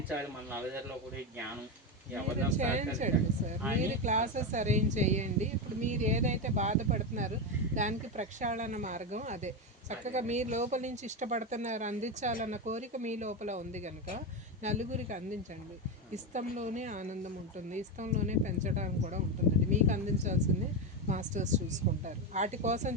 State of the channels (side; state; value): both; normal; correlation 0.13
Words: మన నల్లజర్లో కూడా ఈ జ్ఞానం. చేయించండి సార్, మీరు క్లాసెస్ అరేంజ్ చేయండి. ఇప్పుడు మీరు ఏదైతే బాధపడుతున్నారో దానికి ప్రక్షాళన మార్గం అదే. చక్కగా మీరు లోపల నుంచి ఇష్టపడుతున్నారు, అందించాలన్న కోరిక మీ లోపల ఉంది కనుక నలుగురికి అందించండి. ఇష్టంలోనే ఆనందం ఉంటుంది, ఇష్టంలోనే పెంచడానికి కూడా ఉంటుందండి. మీకు అందించాల్సింది మాస్టర్స్ చూసుకుంటారు. వాటి కోసం